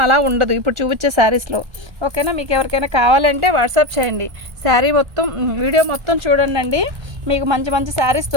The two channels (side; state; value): left; late; 1.3 ms